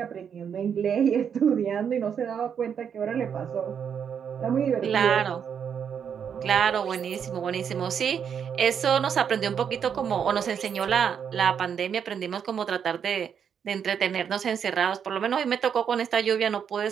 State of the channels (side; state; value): left; quieter; 7.7 dB